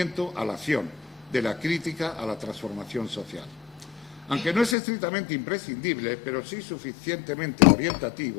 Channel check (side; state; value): right; drops out; at 4.8 s